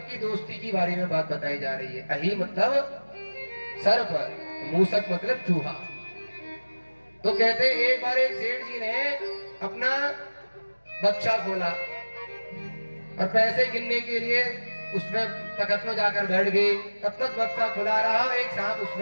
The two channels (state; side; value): inverted; both; correlation -1.00